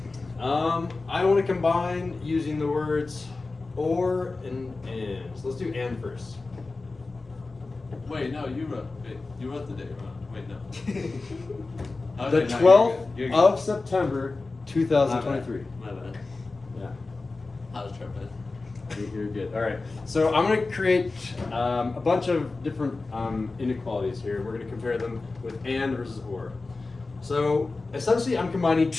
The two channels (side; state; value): right; quieter; 3.6 dB